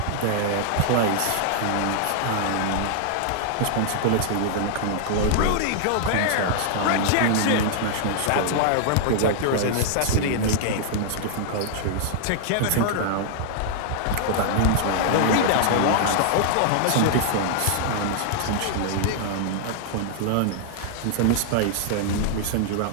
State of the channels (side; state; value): both; different; correlation -0.01